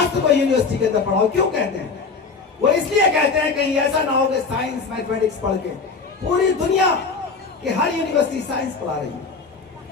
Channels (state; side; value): quieter; right; 4.7 dB